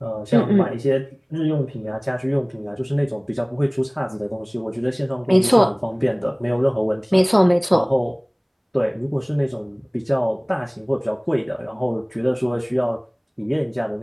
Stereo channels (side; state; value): both; identical; correlation 1.00